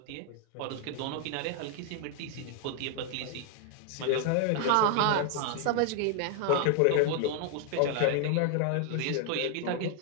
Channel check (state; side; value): different; both; correlation 0.00